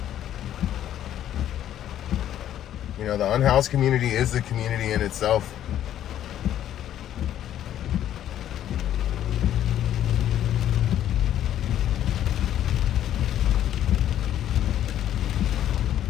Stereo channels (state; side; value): quieter; right; 11.3 dB